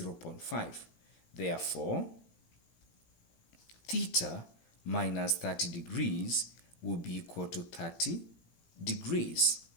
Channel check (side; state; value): right; late; 17 ms